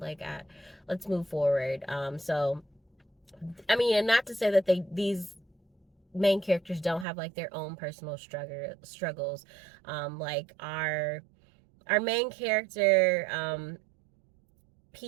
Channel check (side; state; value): left; drops out; at 7.1 s